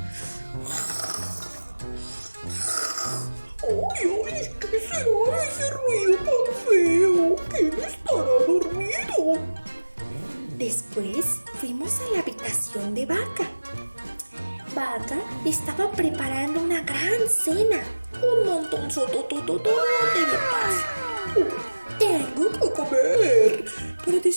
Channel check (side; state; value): both; inverted; correlation -1.00